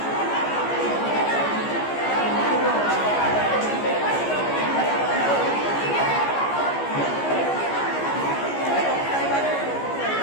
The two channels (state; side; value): late; right; 14 ms